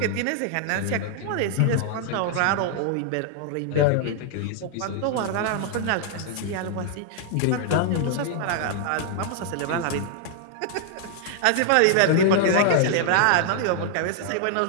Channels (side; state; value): both; different; correlation 0.00